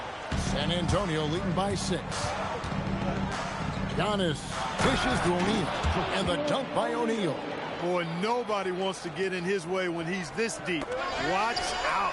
San Antonio leading by 6. Giannis dishes to O'Neal. And the dunk by O'Neal. Boy, nobody wants to get in his way when he's this deep. Watch out.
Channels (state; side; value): identical; both; correlation 1.00